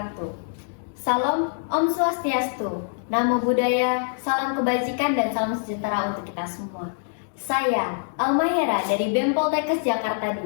Salam Om Swastiastu, Namo Buddhaya, salam kebajikan dan salam sejahtera untuk kita semua. Saya Alma Hera dari BEM Poltekkes Jakarta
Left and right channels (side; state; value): right; silent; digital silence